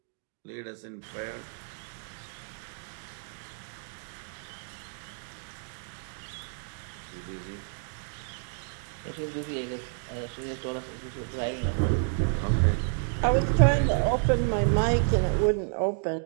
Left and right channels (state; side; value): silent; left; 58 dB below the other